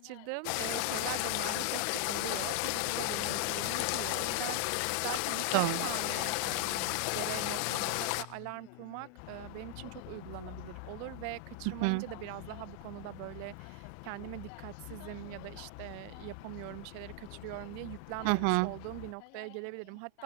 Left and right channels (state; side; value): different; both; correlation 0.00